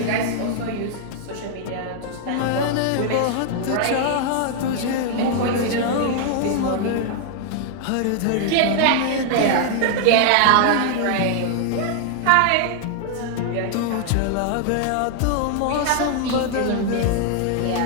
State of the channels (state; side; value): different; both; correlation 0.00